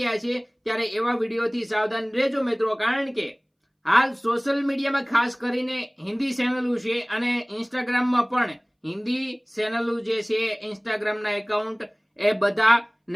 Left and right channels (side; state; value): both; identical; correlation 1.00